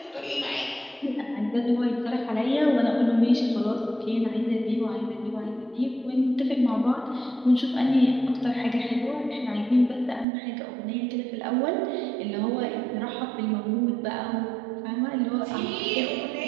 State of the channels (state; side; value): drops out; left; at 10.2 s